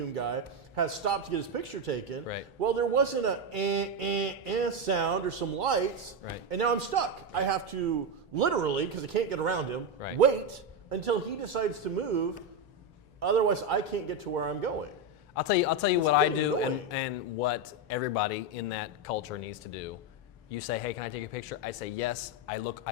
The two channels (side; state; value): both; normal; correlation 0.09